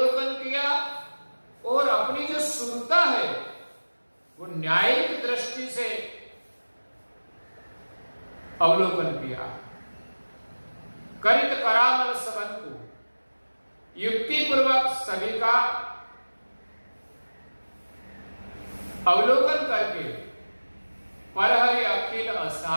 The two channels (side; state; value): both; inverted; correlation -1.00